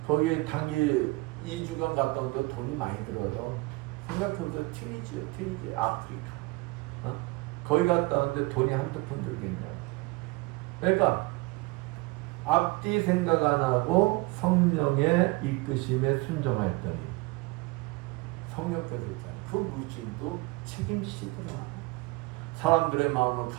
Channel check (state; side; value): quieter; left; 23.5 dB